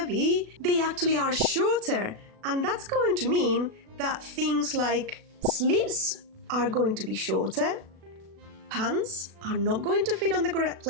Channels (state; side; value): late; left; 36 ms